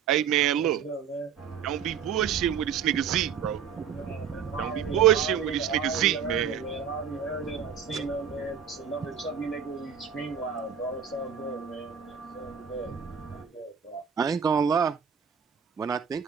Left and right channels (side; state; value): left; quieter; 7.8 dB